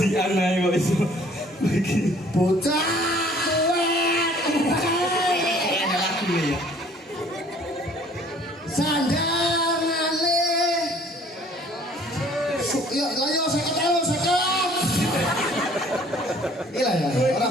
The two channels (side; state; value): both; normal; correlation 0.55